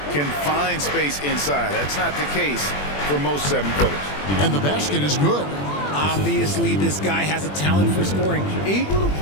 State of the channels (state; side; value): late; right; 21 ms